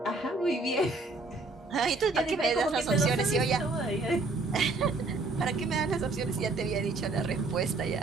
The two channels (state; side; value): quieter; left; 3.4 dB